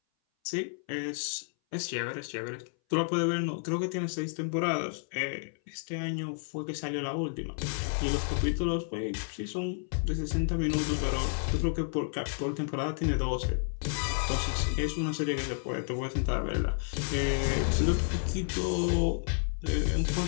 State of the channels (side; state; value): right; silent; 57 dB below the other